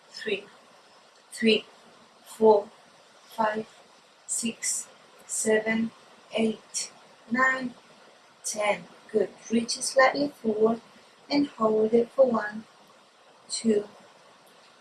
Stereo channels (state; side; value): identical; both; correlation 1.00